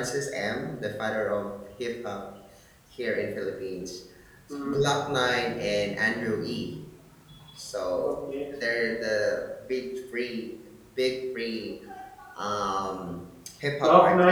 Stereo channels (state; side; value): identical; both; correlation 1.00